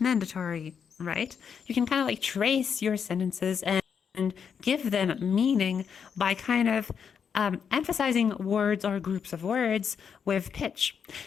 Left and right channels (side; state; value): right; quieter; 7.0 dB